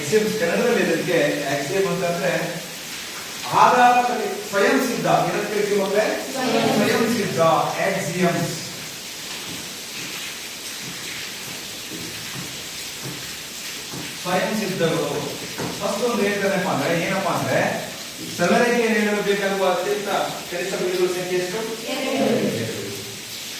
ಕನ್ನಡದಲ್ಲಿ ಇದಕ್ಕೆ ಆಕ್ಸಿಯಂ ಅಂತಂದ್ರೆ ಆಧಾರ, ಸ್ವಯಂ ಸಿದ್ಧ. ಏನಂತ ಕರಿತೀವಿ ಅಂದ್ರೆ ಸ್ವಯಂ ಸಿದ್ಧ ಆಕ್ಸಿಯಮ್ಸ್. ಸ್ವಯಂ ಸಿದ್ಧಗಳು. ಫಸ್ಟ್ ಒಂದು ಹೇಳ್ತಾನಪ್ಪ ಅಂದ್ರೆ ಏನಪ್ಪಾ ಅಂದ್ರೆ ಸರಳ ರೇಖೆಯನ್ನು ಎಳೆಯಲು ಬೇಕಾಗುವ ಅತ್ಯಂತ ಕನಿಷ್ಠ ಬಿಂದುಗಳ ಸಂಖ್ಯೆ ಎಷ್ಟು?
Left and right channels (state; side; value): identical; both; correlation 1.00